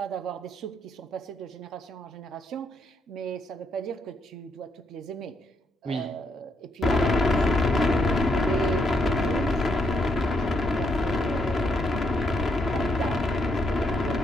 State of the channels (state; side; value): normal; both; correlation 0.76